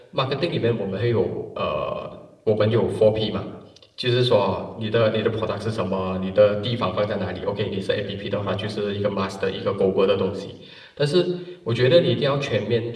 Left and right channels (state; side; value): identical; both; correlation 1.00